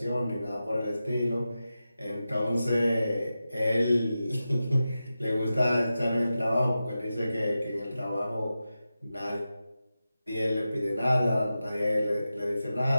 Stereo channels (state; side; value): inverted; both; correlation -0.92